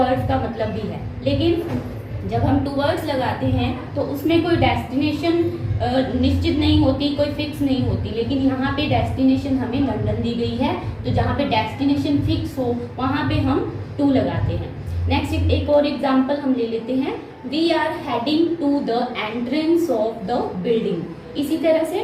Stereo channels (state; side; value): identical; both; correlation 1.00